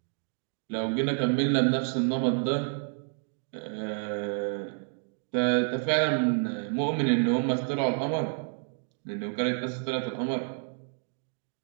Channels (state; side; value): silent; left; 56 dB below the other